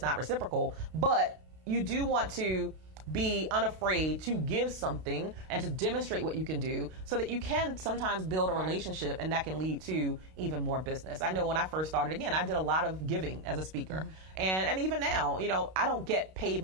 not reciprocal. But you do want to be unafraid to give something and to demonstrate what you can do so that you can sometimes build a relationship, and that can lead to even more business. I know when I first started, again, I did a lot of giving as a speaker. And even now, I don't get paid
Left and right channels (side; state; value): left; late; 32 ms